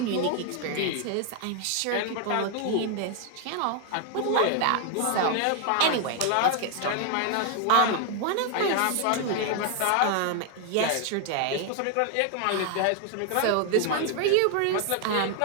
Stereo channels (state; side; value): different; both; correlation 0.00